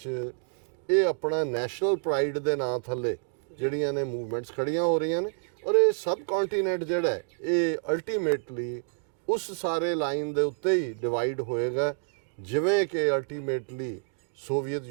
ਇਹ ਆਪਣਾ ਨੈਸ਼ਨਲ ਪ੍ਰਾਈਡ ਦੇ ਨਾਂ ਥੱਲੇ ਜਿਹੜੀਆਂ ਨੇ ਮੂਵਮੈਂਟਸ ਖੜੀਆਂ ਹੋ ਰਹੀਆਂ ਨੇ। ਔਰ ਇਹ ਸਬ ਕੰਟੀਨੈਂਟ ਜਿਹੜਾ ਹੈ ਇਹ ਅਲਟੀਮੇਟਲੀ ਉਸ ਸਾਰੇ ਲਾਈਨ ਦੇ ਉੱਤੇ ਹੀ ਡਿਵਾਈਡ ਹੋਏਗਾ, ਜਿਵੇਂ ਕਿ ਅਲਟੀਮੇਟਲੀ ਸੋਵੀਅਤ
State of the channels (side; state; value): left; silent; digital silence